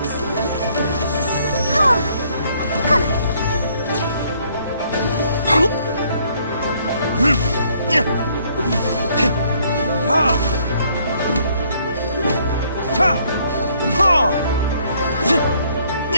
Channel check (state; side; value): inverted; both; correlation -0.65